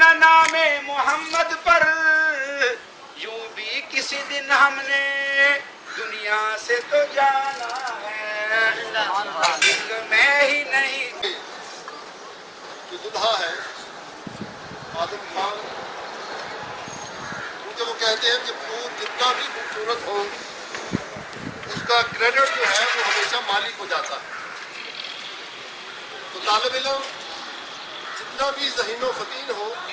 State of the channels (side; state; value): both; identical; correlation 1.00